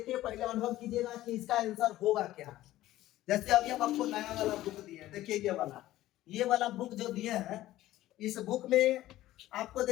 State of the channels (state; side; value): quieter; right; 15.1 dB